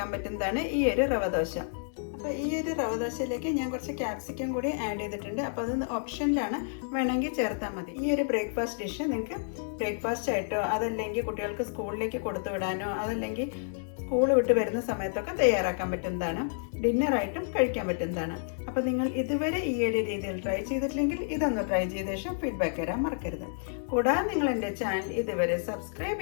പറ്റുന്നതാണ് ഈ ഒരു റവ ദോശ. അപ്പോൾ ഈ ഒരു റവ ദോശയിലേക്ക് ഞാൻ കുറച്ച് ക്യാപ്സിക്കം കൂടി ആഡ് ചെയ്തിട്ടുണ്ട്. അപ്പോൾ അത് ഓപ്ഷനിലാണ്, വേണമെങ്കിൽ ചേർത്താൽ മതി. ഈ ഒരു ബ്രേക്ക്ഫാസ്റ്റ് ഡിഷ് നിങ്ങൾക്ക് ബ്രേക്ക്ഫാസ്റ്റ് ആയിട്ടോ അതല്ലെങ്കിൽ കുട്ടികൾക്ക് സ്കൂളിലേക്ക് കൊടുത്തു വിടാനോ അതല്ലെങ്കിൽ സ്കൂൾ വിട്ട് വരുന്ന സമയത്തൊക്കെ തയ്യാറാക്കാൻ പറ്റുന്നതാണ്. ഡിന്നറായിട്ടും കഴിക്കാൻ പറ്റുന്നതാണ്. അപ്പോൾ നിങ്ങൾ ഇതുവരെ ഈ ഒരു രീതിയിൽ ട്രൈ ചെയ്തിട്ടില്ലെങ്കിൽ ഇതൊന്ന് ട്രൈ ചെയ്ത ശേഷം ഫീഡ്ബാക്ക് തരാൻ മറക്കരുത്. കൂടാതെ നിങ്ങൾ എൻ്റെ ചാനൽ ഇതുവരെ സബ്സ്ക്രൈബ്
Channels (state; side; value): silent; right; digital silence